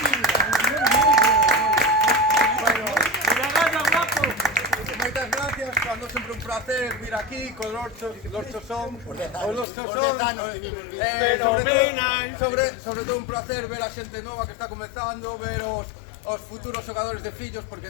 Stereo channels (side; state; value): right; drops out; at 9.7 s